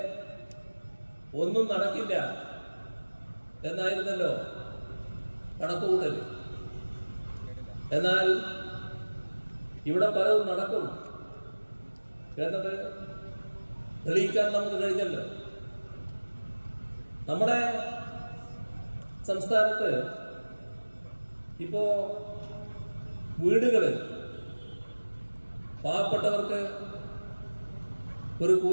ഒന്നും നടക്കില്ല എന്നായിരുന്നല്ലോ കണക്കുകൂട്ടൽ. എന്നാൽ ഇവിടെ പലതും നടക്കും എന്നത് തെളിയിക്കാൻ നമുക്ക് കഴിഞ്ഞല്ലോ. നമ്മുടെ സംസ്ഥാനത്ത് ഇപ്പോ വീടുകള് പാവപ്പെട്ടവർക്ക് ഒരു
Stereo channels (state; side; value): inverted; both; correlation -1.00